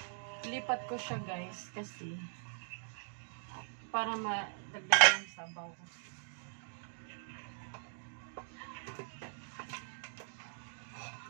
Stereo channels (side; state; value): left; silent; digital silence